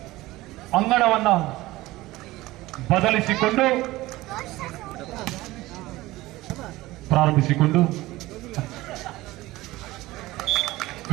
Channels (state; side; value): quieter; left; 18.4 dB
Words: ಅಂಗಣವನ್ನ ಬದಲಿಸಿಕೊಂಡು ಪ್ರಾರಂಭಿಸಿಕೊಂಡು